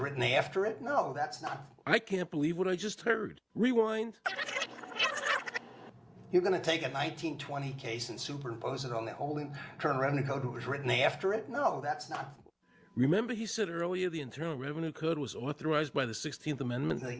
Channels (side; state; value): both; identical; correlation 1.00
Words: after it? No, that's not. I can't believe what I just heard. Rewind. You're going to take a 1920 case and superimpose it on the whole Internal Revenue Code that was written after it? No, that's not. Remember he said earlier the Internal Revenue Code was authorized by the 16th Amendment?